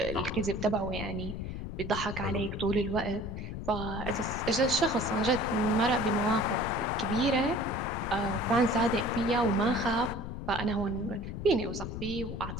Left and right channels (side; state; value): left; noise; rumble, 7 dB below the sound